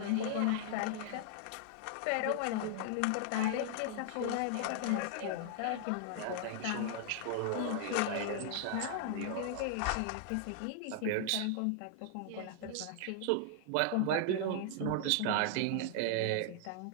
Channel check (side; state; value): both; different; correlation -0.01